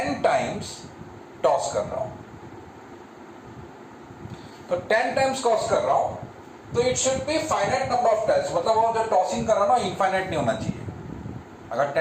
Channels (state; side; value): identical; both; correlation 1.00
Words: टाइम्स टॉस कर रहा हूं. तो 10 टाइम्स टॉस कर रहा हूं तो it should be finite number of trials. मतलब वो जो टॉसिंग कर रहा हूं ना इनफाइनाइट नहीं होना चाहिए. अगर